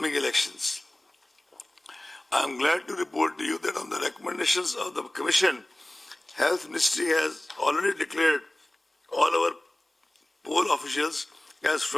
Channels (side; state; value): both; normal; correlation 0.98